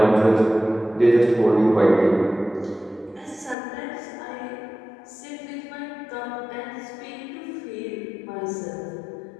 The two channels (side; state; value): right; drops out; at 3.6 s